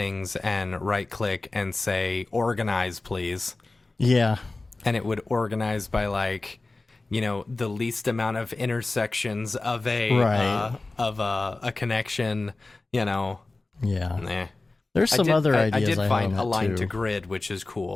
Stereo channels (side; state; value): right; quieter; 3.3 dB